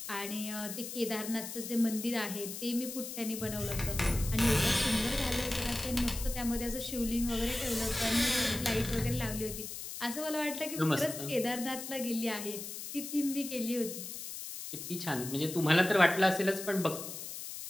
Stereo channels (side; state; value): left; noise; hiss, 8 dB below the sound